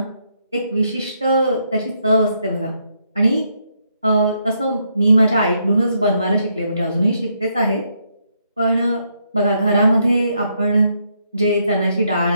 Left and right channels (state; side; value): inverted; both; correlation -0.76